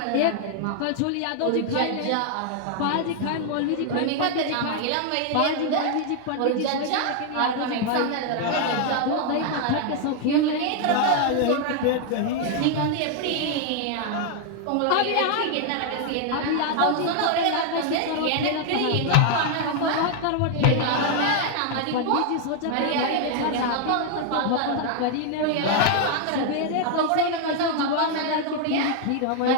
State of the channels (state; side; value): different; both; correlation 0.00